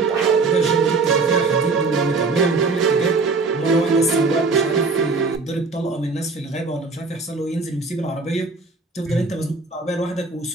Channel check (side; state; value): left; quieter; 4.0 dB